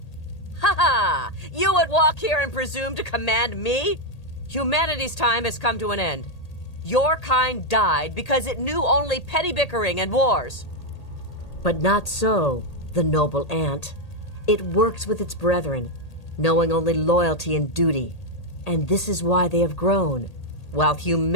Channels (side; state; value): right; late; 1.8 ms